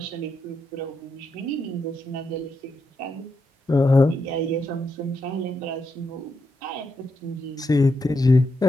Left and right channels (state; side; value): normal; both; correlation 0.83